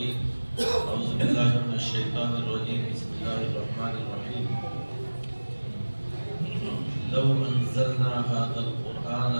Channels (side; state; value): both; inverted; correlation -1.00